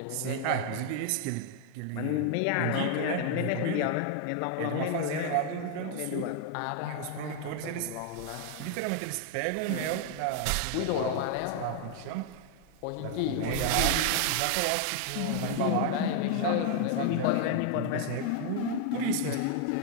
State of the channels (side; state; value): both; different; correlation 0.00